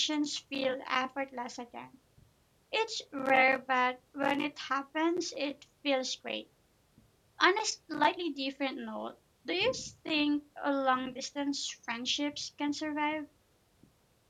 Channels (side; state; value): both; identical; correlation 1.00